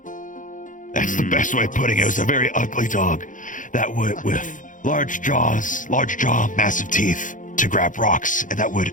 That's the best way of putting it. It was a very ugly dog that would, with large jaw, massive teeth to grab rocks, and that would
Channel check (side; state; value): right; late; 0.38 ms